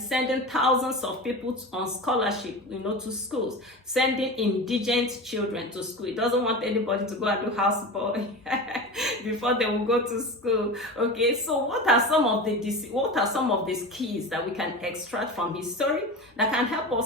sending thousands of people on scholarship, to schools, sending indigent children to school. He doesn't want anybody to go and do houseboy before they will go to school, okay? So what are some of these keys that we can extract from his story that can help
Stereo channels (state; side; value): normal; both; correlation 0.29